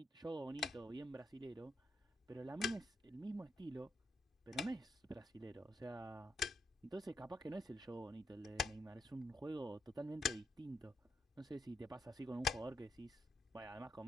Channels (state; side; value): normal; both; correlation 0.80